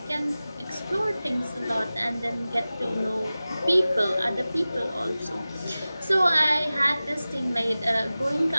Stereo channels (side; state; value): both; inverted; correlation -0.96